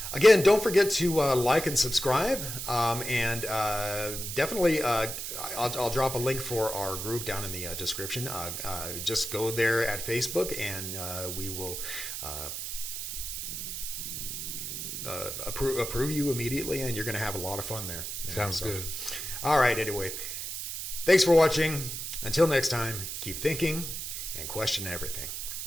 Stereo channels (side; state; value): right; noise; hiss, 5 dB below the sound